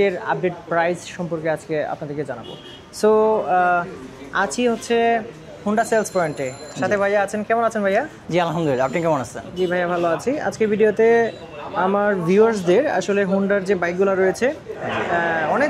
আপডেট প্রাইস সম্পর্কে আজকে আপনাদেরকে জানাবো। সো আছি হচ্ছে হুন্ডা সেলস পয়েন্টে, সাথে ভাইয়া আছেন। কেমন আছেন ভাইয়া? জি আলহামদুলিল্লাহ, আপনি কেমন আছেন? জি ভাইয়া ভালো আছি। আজকের ভিডিওতে আমার ভিউয়ার্সদের আসলে হুন্ডার যে বাইকগুলো রয়েছে,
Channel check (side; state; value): both; identical; correlation 1.00